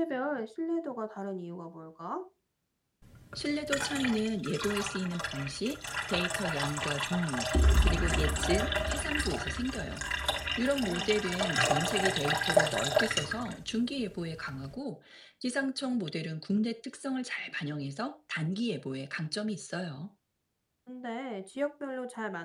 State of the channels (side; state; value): both; identical; correlation 1.00